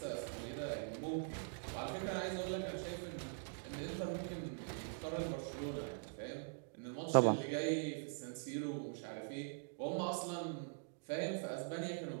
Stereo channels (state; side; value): silent; left; digital silence